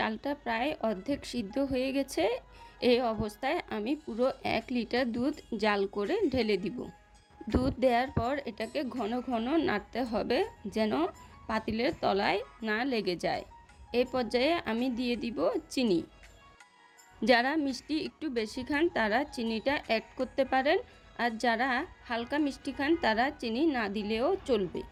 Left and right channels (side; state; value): both; identical; correlation 1.00